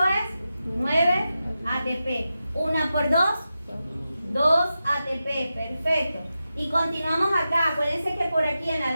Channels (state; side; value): inverted; both; correlation -0.91